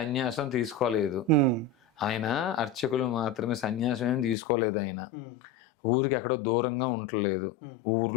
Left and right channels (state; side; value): drops out; right; at 4.4 s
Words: తీసుకోలేదు, ఆయన అర్చకులు మాత్రమే, సన్యాసం ఏం తీసుకోలేదు. ఆయన ఊరికి ఎక్కడో దూరంగా ఉండలేదు,